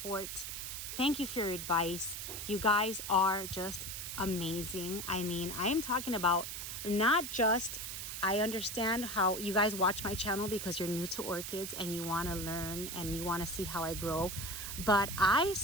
Thank you for your advice. You guys are just amazing. I mean, I am talking about not just, I understand how you guys watch my channel because you're new to orchids and you want to learn and you want to see how I grow, but I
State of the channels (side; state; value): right; noise; hiss, 6 dB below the sound